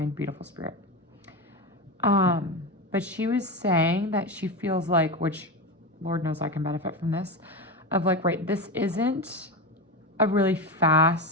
beautiful spirit. But she was saying that she feels like, which Lord knows I can benefit from this, of like, right, this isn't a really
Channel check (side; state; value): both; normal; correlation 0.18